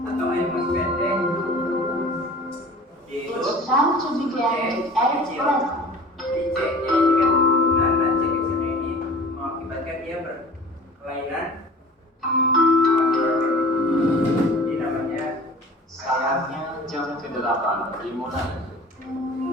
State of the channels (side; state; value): both; normal; correlation 0.42